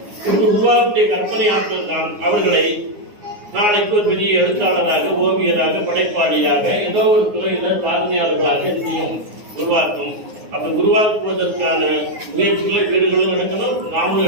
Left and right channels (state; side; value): late; left; 9.6 ms